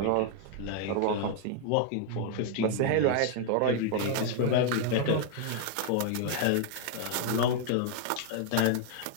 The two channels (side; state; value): both; different; correlation 0.00